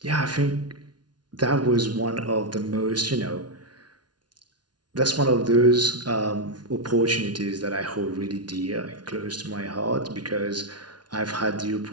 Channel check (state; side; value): late; left; 0.70 ms